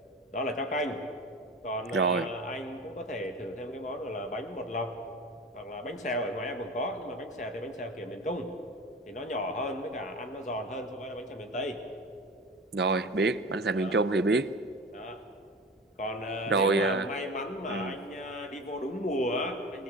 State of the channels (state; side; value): normal; both; correlation 0.33